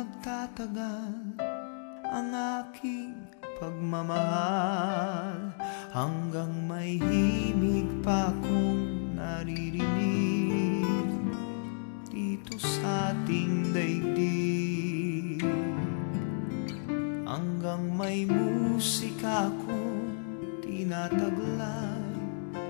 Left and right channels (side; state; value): right; silent; digital silence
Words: ang aking pagmamahal, hanggang may himig pa akong naririnig dito sa ating daigdig, hanggang may musika akong tinataglay,